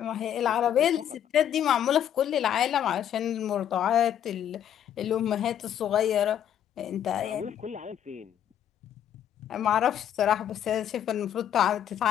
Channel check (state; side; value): quieter; right; 10.0 dB